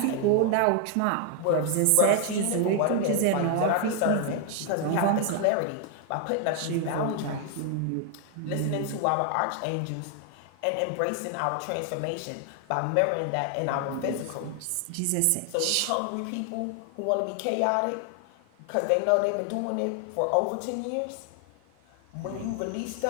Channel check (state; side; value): different; both; correlation 0.00